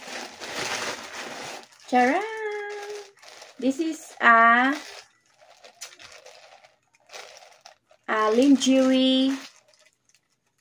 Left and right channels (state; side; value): identical; both; correlation 1.00